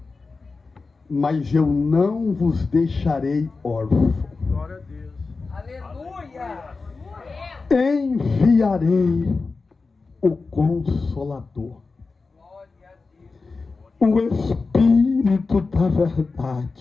mas eu não vos deixarei órfãos. Glória a Deus. Aleluia. Enviarei o Consolador, Glória a Deus. o Espírito da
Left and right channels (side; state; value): right; quieter; 4.1 dB